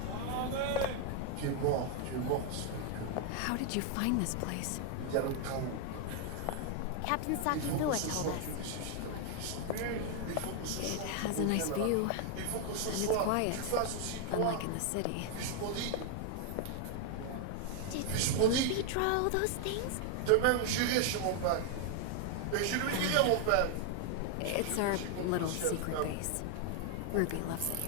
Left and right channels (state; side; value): different; both; correlation 0.00